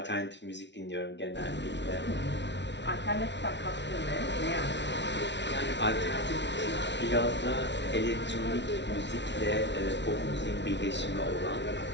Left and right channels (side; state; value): right; late; 0.51 ms